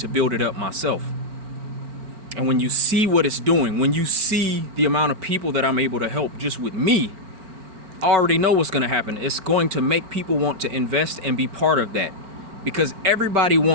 build it up myself. And when you see what it's doing, when you see the amount of people that I'm able to help just with me, I already know what's going to happen. It's going to make people want to invest and be part of that, because everybody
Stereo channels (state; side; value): late; left; 4.4 ms